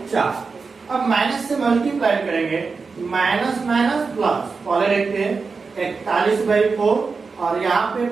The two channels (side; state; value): left; quieter; 4.7 dB